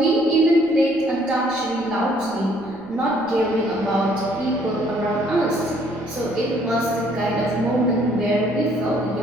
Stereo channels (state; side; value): noise; right; rumble, 27 dB below the sound